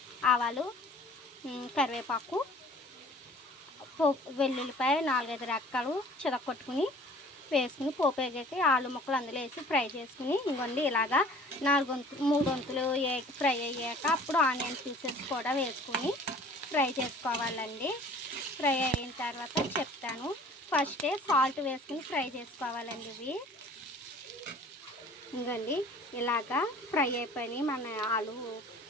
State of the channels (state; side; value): normal; both; correlation 0.49